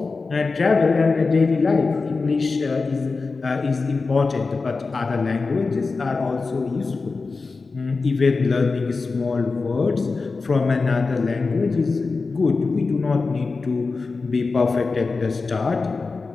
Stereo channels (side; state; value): right; quieter; 4.1 dB